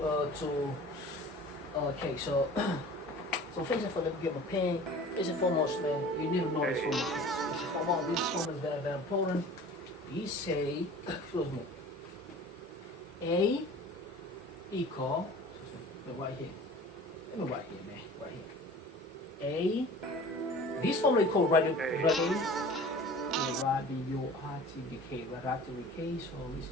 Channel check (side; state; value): both; normal; correlation 0.43